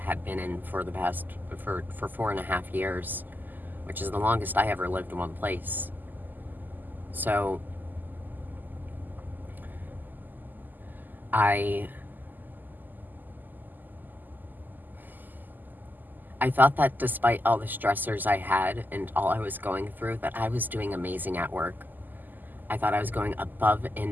had been in for the past, for 4.5 years, which is the longest I ever lived in one place. So I thought that despite all the stressors I had and all I was going through, that I was doing amazing at work. I thought I was going above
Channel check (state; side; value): late; left; 0.086 ms